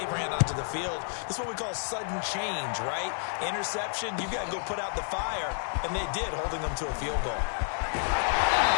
ran onto the field. This is what we call sudden change, right? Interception, you've got to go put out the fire, and they did, holding them to a field goal.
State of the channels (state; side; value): silent; right; 58 dB below the other